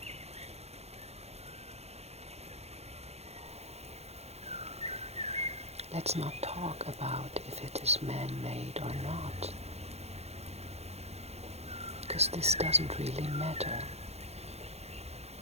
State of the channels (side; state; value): left; late; 0.31 ms